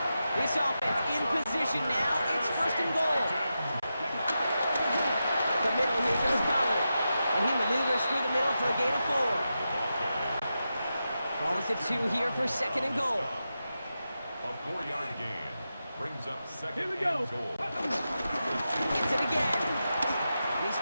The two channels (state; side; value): inverted; both; correlation -0.90